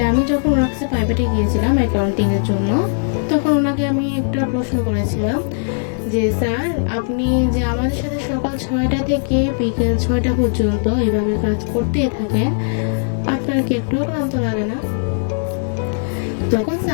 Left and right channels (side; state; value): right; silent; digital silence